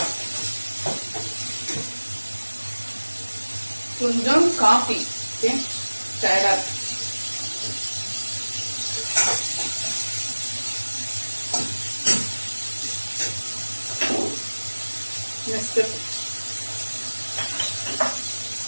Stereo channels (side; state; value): both; inverted; correlation -1.00